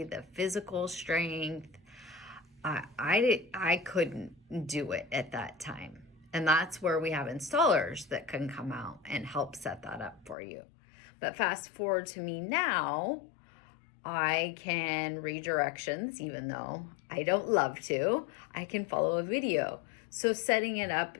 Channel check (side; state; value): right; drops out; at 10.4 s